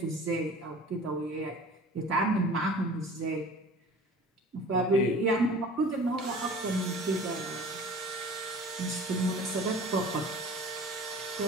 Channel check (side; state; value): both; normal; correlation 0.43